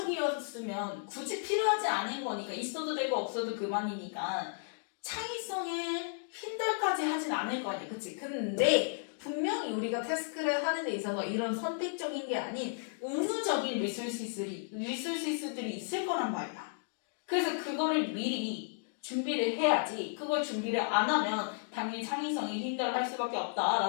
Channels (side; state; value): right; silent; digital silence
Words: 굳이 필요하지 않은 거니까 있어도 되고 없어도 그만이니까 창의성에 힌들까지 하진 않을 않을 거 아니야, 그치? 근데 분명히 우리가 태스크를 하는 데 있어서 이런 선택적인 게 아닌 의무적인 리소시스들이 있을 거란 말이야. 그래서 그거를 미리 준비를 해야지. 그걸 준비를 안 하면 당연히 창의성이 힘들어할 수밖에